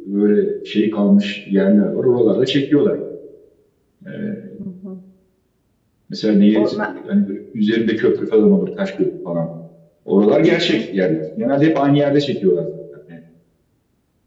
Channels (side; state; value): both; identical; correlation 1.00